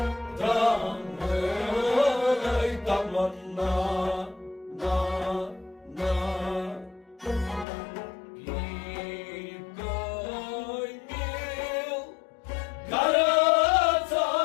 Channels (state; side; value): drops out; right; at 7.7 s